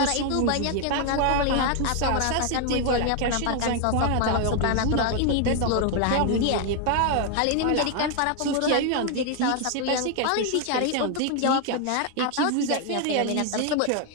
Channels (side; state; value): both; different; correlation 0.00